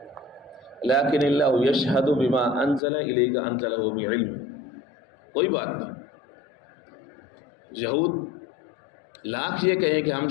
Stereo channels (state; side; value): drops out; right; at 2.8 s